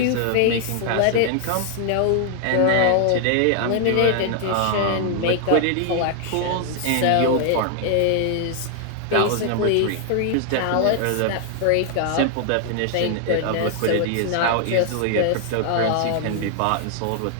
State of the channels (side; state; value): both; different; correlation 0.00